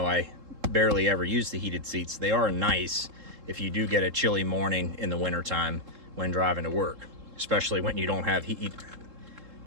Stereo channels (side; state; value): left; late; 3.7 ms